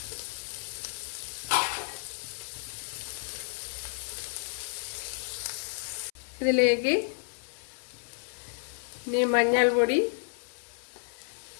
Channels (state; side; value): silent; right; 57 dB below the other